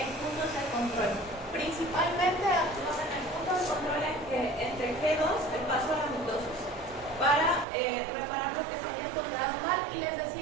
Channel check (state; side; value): drops out; left; at 7.7 s